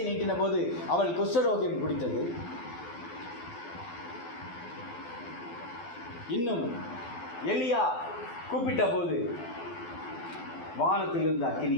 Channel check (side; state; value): right; late; 12 ms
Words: நீட்டின போது அவள் குஷ்டரோகம் பிடித்தது. இன்னும் எலியா கூப்பிட்ட போது வானத்திலிருந்து அக்கினி